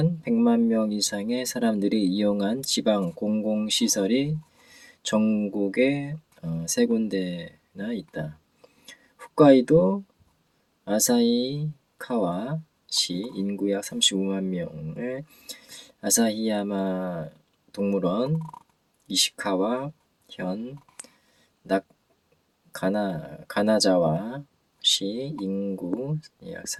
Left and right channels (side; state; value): both; identical; correlation 1.00